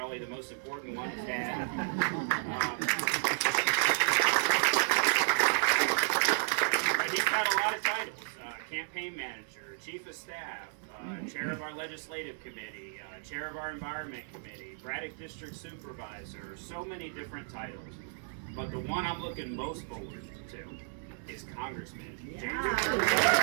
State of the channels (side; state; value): left; silent; digital silence